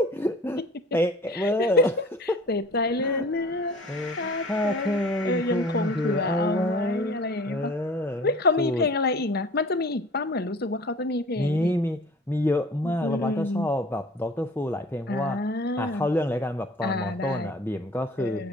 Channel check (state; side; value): normal; both; correlation 0.46